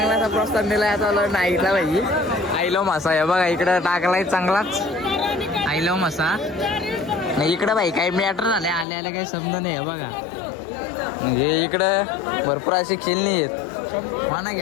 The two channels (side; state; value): right; drops out; at 8.8 s